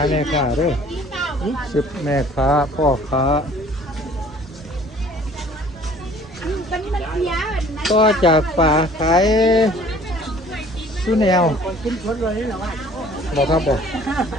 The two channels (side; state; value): both; normal; correlation 0.53